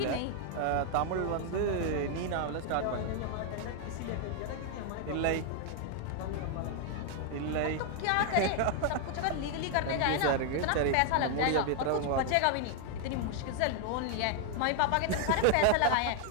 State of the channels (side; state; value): both; different; correlation 0.00